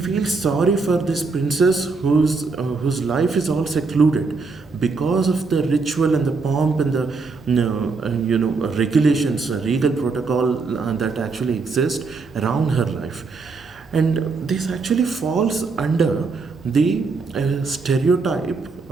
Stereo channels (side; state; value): left; quieter; 4.3 dB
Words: sorry for this princess whose life is all secluded because of the ritual and the pomp and the regulations, regal protocol that actually exist around her life. And this actually falls under the stereotype